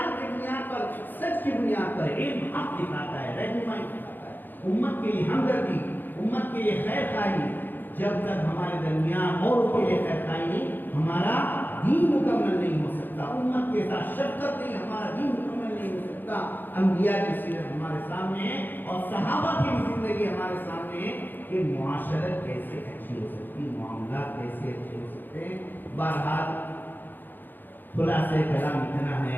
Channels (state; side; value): late; right; 0.090 ms